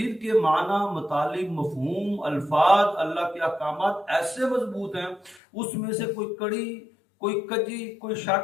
کے معنی، مطالب، مفہوم، الفاظ، اللہ کے احکامات ایسے مضبوط ہیں، اس میں سے کوئی کڑی، کوئی کجی، کوئی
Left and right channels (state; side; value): drops out; right; at 5.4 s